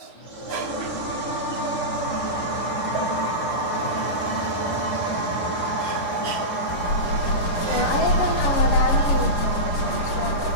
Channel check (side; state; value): right; late; 10 ms